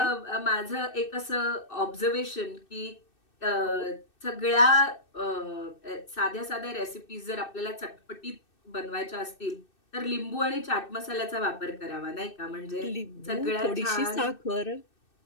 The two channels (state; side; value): late; right; 2.6 ms